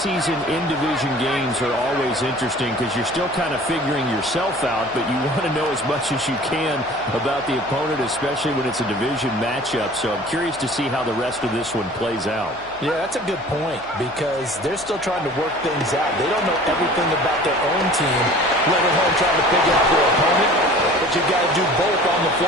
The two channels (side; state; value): left; noise; hum, 24 dB below the sound